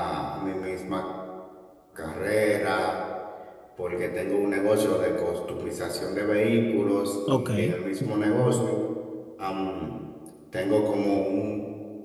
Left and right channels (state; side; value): identical; both; correlation 1.00